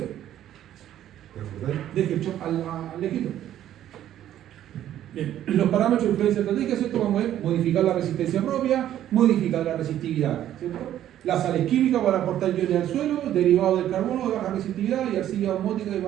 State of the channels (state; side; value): quieter; left; 11.7 dB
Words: Deje el chop al lejito. Bien, los parámetros de influencia estratégica, ¿cierto? Vamos a ver, modificar la resistencia propia, modificar la resistividad, ¿cierto? Las sales químicas para aportar iones al suelo, derivados del carbono de baja resistividad y arcilla osmótica de